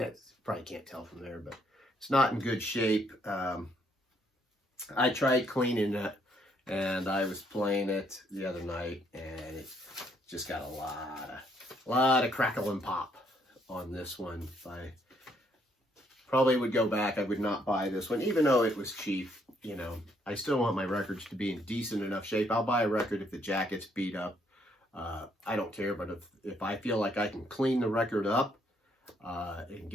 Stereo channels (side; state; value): both; normal; correlation 0.70